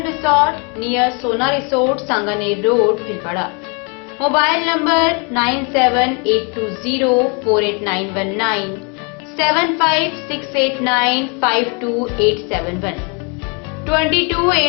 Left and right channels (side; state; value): right; quieter; 34.0 dB